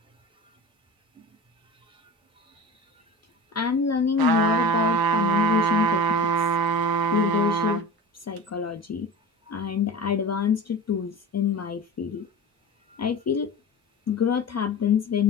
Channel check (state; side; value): normal; both; correlation 0.33